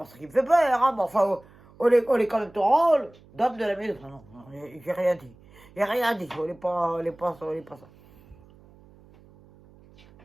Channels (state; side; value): noise; right; hum, 26 dB below the sound